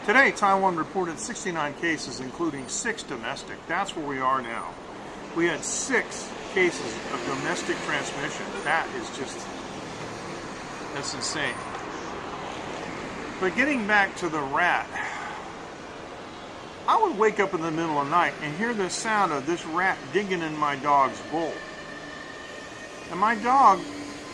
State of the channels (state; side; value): identical; both; correlation 1.00